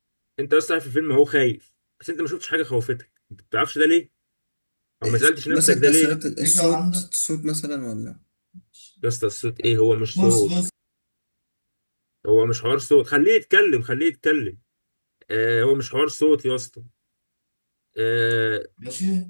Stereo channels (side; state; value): both; inverted; correlation -1.00